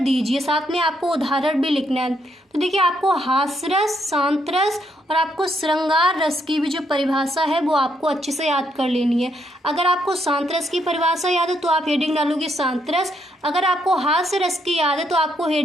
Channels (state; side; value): normal; both; correlation 0.76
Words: दीजिए। साथ में आपको उदाहरण भी लिखना है। तो देखिए आपको हास्य रस, शांत रस और आपको श्रृंगार रस की भी जो परिभाषा है वो आपको अच्छे से याद कर लेनी है। अगर आपको शांत रस की परिभाषा याद है तो आप हेडिंग डालोगे शांत रस। अगर आपको हास्य रस की याद है तो आपको